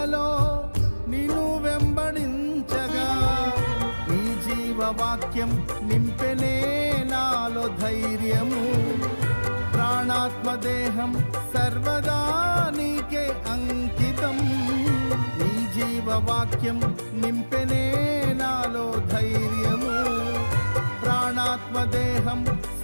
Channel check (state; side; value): inverted; both; correlation -1.00